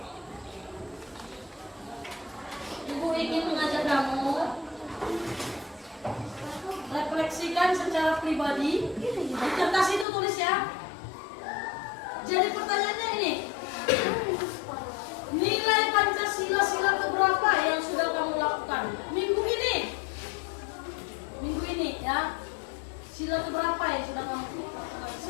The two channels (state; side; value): drops out; right; at 10.1 s